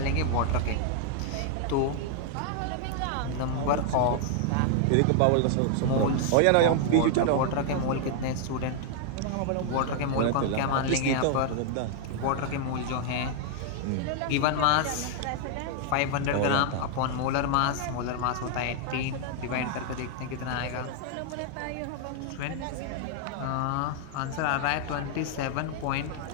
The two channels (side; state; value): both; different; correlation 0.00